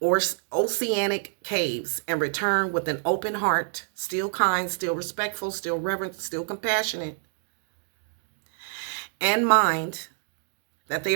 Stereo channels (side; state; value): left; silent; digital silence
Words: oceanic caves and return with an open heart, still kind, still respectful, still reverent, still compassionate, and mind, that they